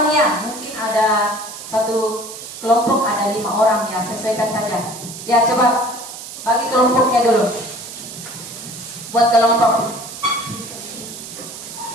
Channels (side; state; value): right; noise; hiss, 12 dB below the sound